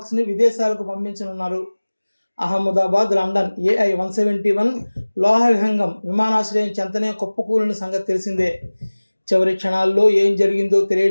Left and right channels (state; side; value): inverted; both; correlation -1.00